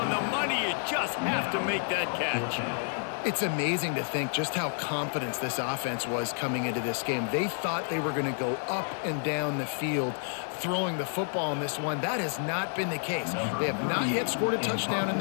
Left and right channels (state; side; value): silent; right; 58 dB below the other